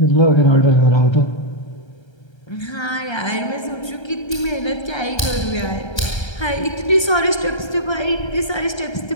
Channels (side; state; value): right; late; 1.3 ms